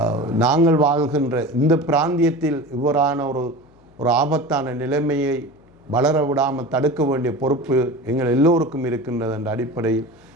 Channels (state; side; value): noise; left; hum, 29 dB below the sound